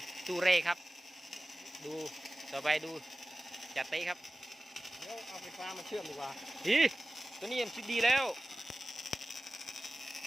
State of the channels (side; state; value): both; normal; correlation 0.97